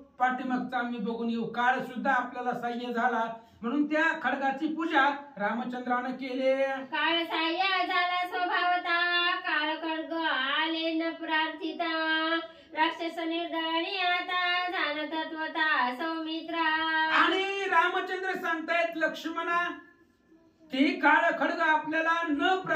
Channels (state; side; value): identical; both; correlation 1.00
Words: पाठीमागचा आम्ही बघून येऊ. काळ सुद्धा आपल्याला सहाय्य झाला म्हणून त्या खडगाची पूजा रामचंद्रानं केले. काळ सहाय्य झाला स्वभावता, काळ खड्ग आले न प्रार्थिता, राक्षस निर्दळणी आता जाण तत्वता सौमित्रा. आणि रामचंद्र सांगतायत लक्ष्मणा, ते काळ खड्ग आपल्याला न